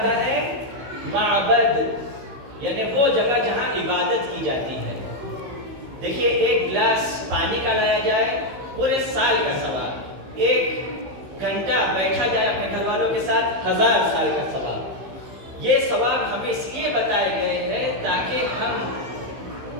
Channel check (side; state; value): left; late; 15 ms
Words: ہے معبد، یعنی وہ جگہ جہاں عبادت کی جاتی ہے۔ دیکھیے ایک گلاس پانی کا لایا جائے پورے سال کا ثواب، ایک گھنٹہ بیٹھا جائے اپنے گھر والوں کے ساتھ 1000 سال کا ثواب۔ یہ ثواب ہمیں اس لیے بتائے گئے ہیں تاکہ ہم